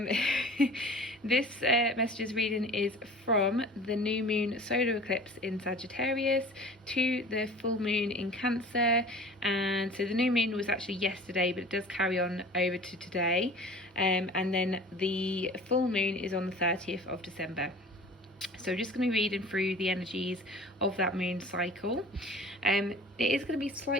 This messages reading is from the new moon solar eclipse in Sagittarius to the full moon in Cancer. And so the new moon was actually yesterday, but it does carry on over to today, and then the full moon is on the 30th of December. So I'm just going to be reading through the energies of that moon cycle. It is going to be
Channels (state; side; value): normal; both; correlation 0.42